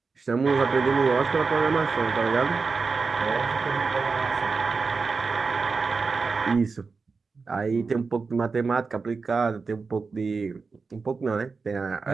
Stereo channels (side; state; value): left; quieter; 4.6 dB